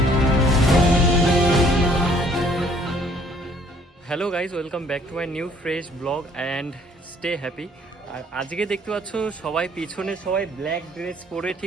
Hello guys, welcome back to my new fresh blog and stay happy. আর আজকে দেখতে পাচ্ছ সবাই পিছনে সবাই ব্ল্যাক ড্রেস পরে,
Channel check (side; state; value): both; normal; correlation 0.60